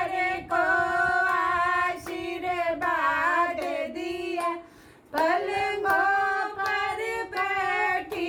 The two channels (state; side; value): identical; both; correlation 1.00